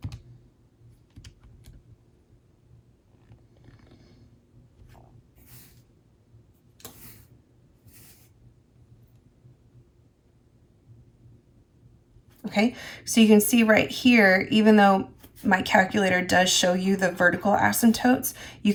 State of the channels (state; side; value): identical; both; correlation 1.00